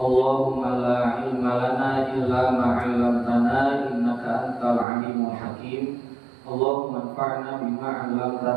la ilma lana illa ma 'allamtana innaka antal alimul hakim. Allahumma anfa'na bima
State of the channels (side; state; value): left; drops out; at 4.9 s